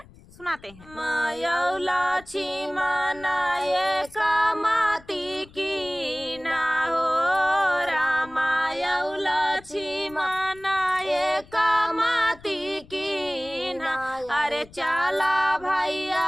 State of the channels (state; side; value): noise; left; rumble, 23 dB below the sound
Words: सुनाते हैं। मायौला छी मनाए कामती की ना हो रामायौला छी मनाए कामती की ना। अरे चला